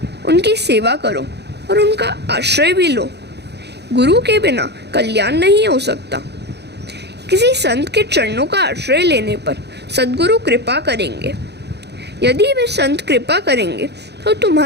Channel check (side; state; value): left; late; 0.49 ms